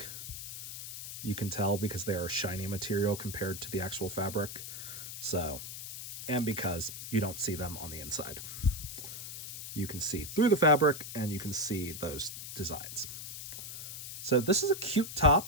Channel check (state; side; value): noise; left; hiss, 9 dB below the sound